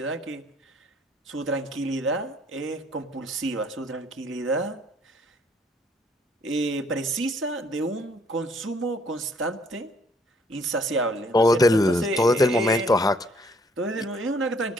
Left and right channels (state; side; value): normal; both; correlation 0.63